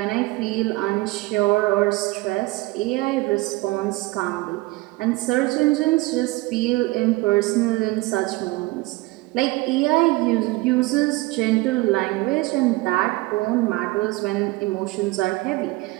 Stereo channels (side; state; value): left; quieter; 21.4 dB